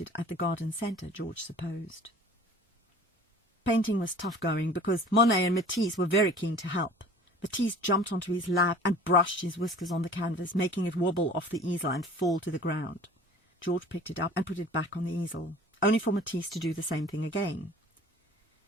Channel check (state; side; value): normal; both; correlation 0.45